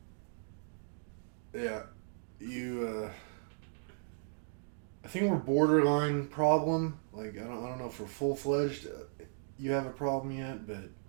Yeah. I think we're borderline problem. Like, I don't know if we're full-fledged. You have a problem yet, but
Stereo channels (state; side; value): silent; left; digital silence